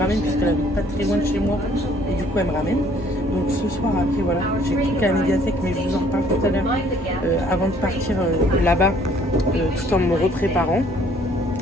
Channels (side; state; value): both; normal; correlation 0.60